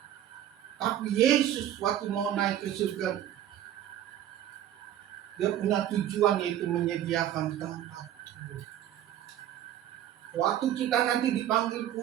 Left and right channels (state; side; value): quieter; left; 11.5 dB